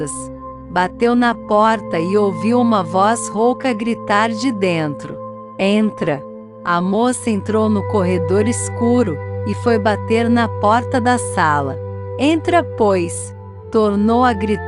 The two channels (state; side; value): identical; both; correlation 1.00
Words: Bateu na porta e ouviu uma voz rouca gritar de dentro: "Entra." A moça entrou no corredor escuro e foi bater na porta da sala. "Entra, pois", tornou a